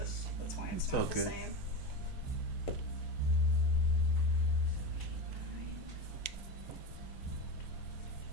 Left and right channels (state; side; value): normal; both; correlation 0.22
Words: That's why it's not the okay. same.